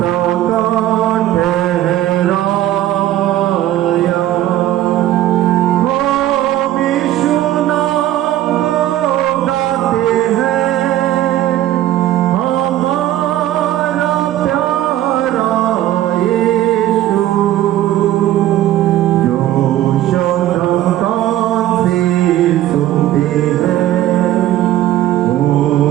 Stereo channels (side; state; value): left; quieter; 13.5 dB